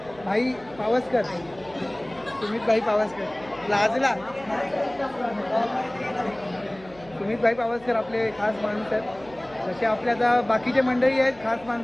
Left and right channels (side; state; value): right; noise; hum, 22 dB below the sound